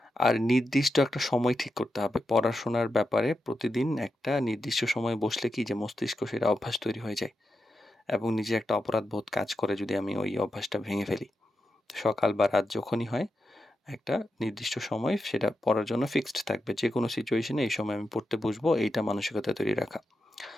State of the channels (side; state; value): both; normal; correlation 0.88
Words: আর নির্দিষ্ট একটা সময় ঠিক করতে হবে। পড়াশোনার ব্যাপারে প্রতিদিন একটা নির্দিষ্ট সময়ে বসলে কি যে মস্তিষ্ক সেটা অভ্যাস তৈরি হয়ে যায় এবং নিজে একটা অপরাধবোধ কাজ করে যদি আমি ওই অভ্যাসটা ভেঙে ফেলি। সকাল বা রাত যখনই হয় একটা নির্দিষ্ট সময় সেটা পড়ার জন্য ফিক্সড থাকবে। যেকোনো সিচুয়েশনে এই সময় আমি পড়তে বসবো এইটা মানসিকতা তৈরি রাখা।